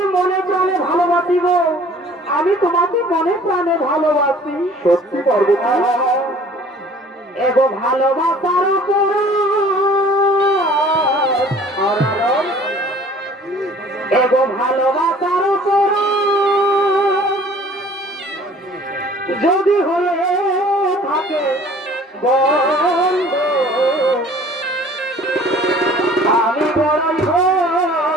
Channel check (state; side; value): normal; both; correlation 0.51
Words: আমি তোমাকে মনে প্রাণে ভালোবাসি। সত্যি পার্বতী, এগো ভালোবাসার এগো ভালোবাসার যদি হয়ে থাকে বন্ধ, আমি বড়ই